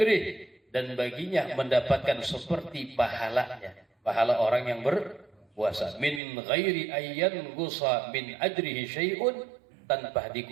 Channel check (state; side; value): drops out; left; at 6.2 s